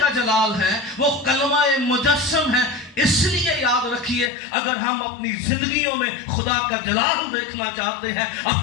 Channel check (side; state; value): right; drops out; at 4.3 s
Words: जलाल है, वो कलमा मुजस्सम है। इसलिए याद रखिए अगर हम अपनी जिंदगियों में खुदा का जलाल देखना चाहते हैं,